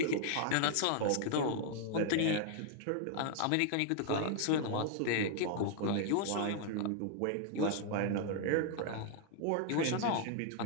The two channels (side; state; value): both; different; correlation 0.00